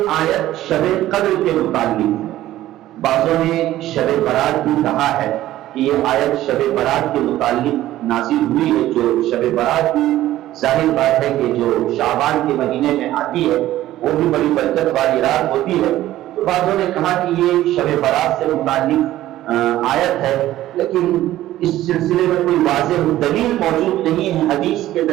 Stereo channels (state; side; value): quieter; left; 14.4 dB